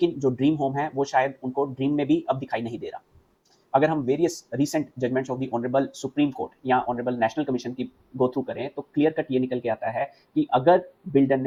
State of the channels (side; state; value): both; identical; correlation 1.00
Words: जो ड्रीम होम है वो शायद उनको ड्रीम में भी अब दिखाई नहीं दे रहा। अगर हम various recent judgements of the honourable supreme court या ऑनरेबल नेशनल कमीशन की गो थ्रू करें तो क्लियर कट ये निकल के आता है कि अगर बिल्डर